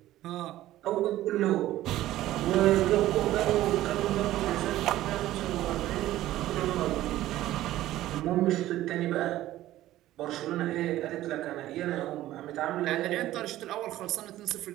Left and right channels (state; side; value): quieter; left; 14.7 dB